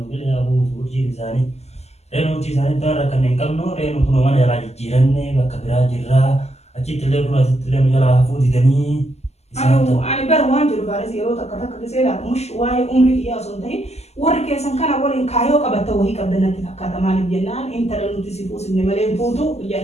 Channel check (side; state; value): right; late; 0.31 ms